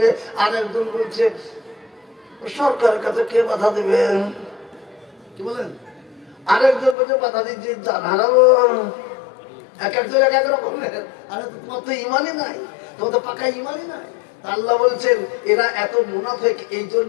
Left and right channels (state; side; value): drops out; right; at 7.0 s